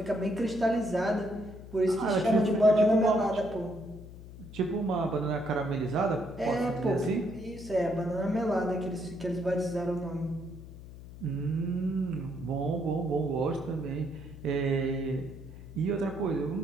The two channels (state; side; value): noise; left; hum, 15 dB below the sound